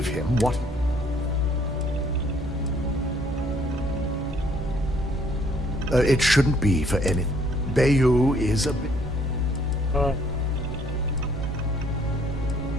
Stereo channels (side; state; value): both; normal; correlation 0.63